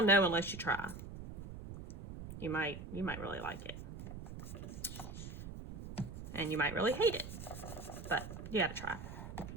know unless you try. You might really like it. And you might really hate it, but you gotta try.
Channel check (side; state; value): right; noise; rumble, 10 dB below the sound